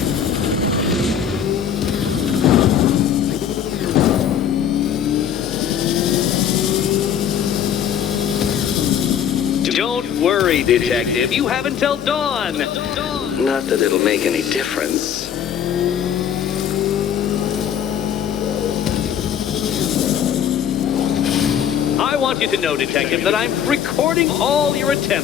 Don't worry, detective. You have until dawn. Not that it'll make any difference. I want you to know, detective, that I'm recording all your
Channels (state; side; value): quieter; right; 8.8 dB